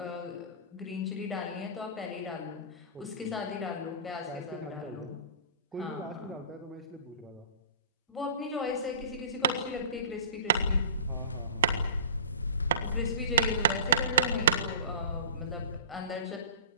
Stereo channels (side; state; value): both; inverted; correlation -0.39